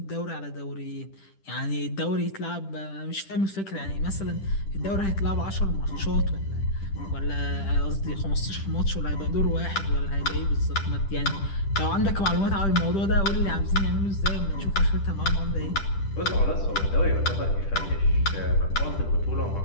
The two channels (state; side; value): late; right; 10 ms